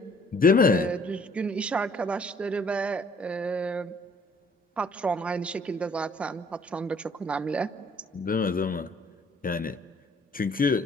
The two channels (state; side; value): normal; both; correlation 0.59